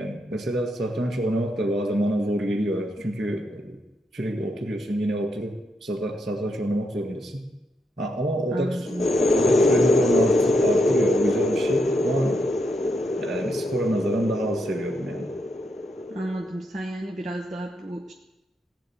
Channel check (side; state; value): both; normal; correlation 0.80